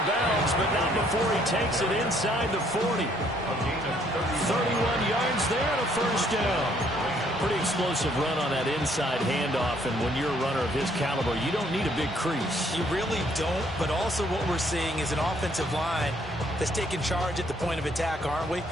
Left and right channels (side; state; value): both; normal; correlation 0.66